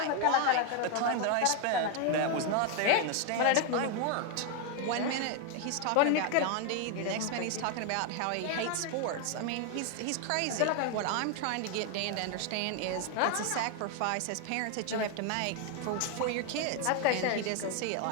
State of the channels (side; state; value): both; different; correlation 0.01